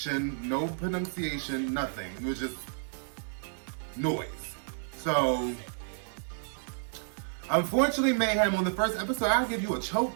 no pronunciation, nothing. It was just noise. So, unfortunately, Mayhem, on the first episode, I'll give you a choke,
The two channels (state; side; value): silent; left; 57 dB below the other